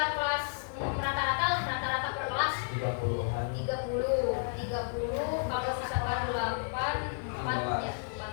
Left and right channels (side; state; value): right; silent; 56 dB below the other